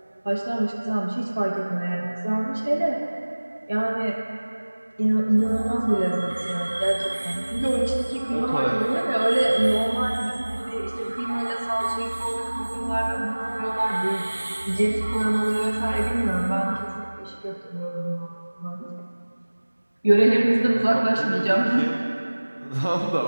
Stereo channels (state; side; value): inverted; both; correlation -1.00